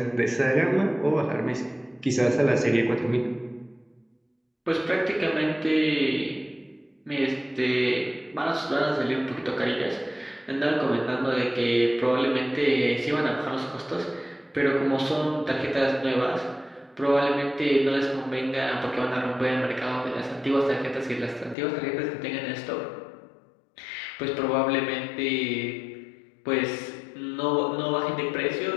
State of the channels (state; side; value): drops out; right; at 21.6 s